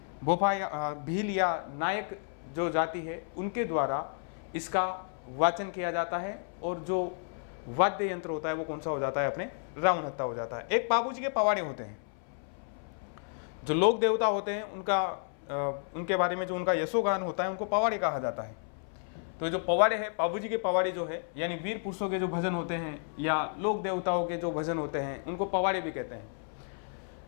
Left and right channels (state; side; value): silent; right; 57 dB below the other